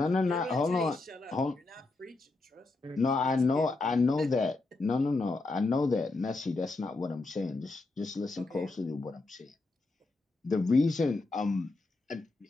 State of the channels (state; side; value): quieter; right; 3.3 dB